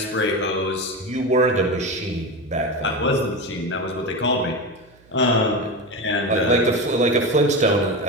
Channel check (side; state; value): right; noise; hum, 29 dB below the sound